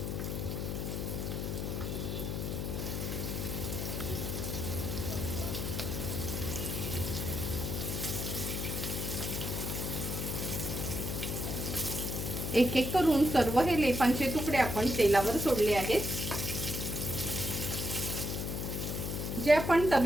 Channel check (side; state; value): left; noise; hum, 3 dB below the sound